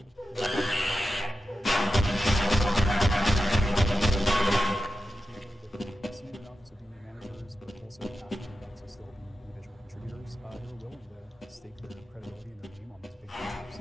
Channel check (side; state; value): both; normal; correlation 0.91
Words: Senior enough to be managers, but also passionate enough to still be individual contributors. They were willing to stake their credibility and their name on these big